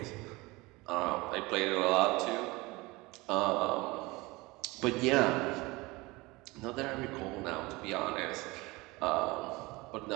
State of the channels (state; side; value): quieter; left; 22.8 dB